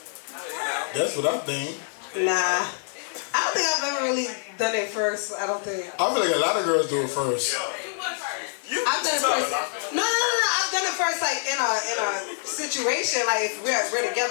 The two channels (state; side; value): silent; right; 61 dB below the other